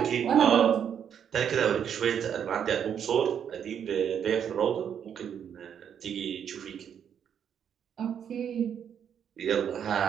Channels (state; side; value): quieter; left; 8.4 dB